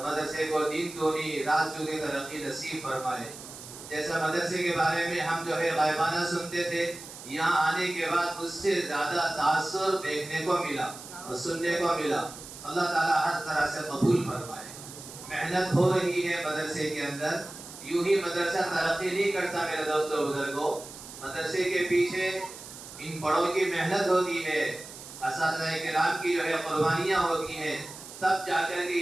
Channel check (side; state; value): right; noise; hiss, 14 dB below the sound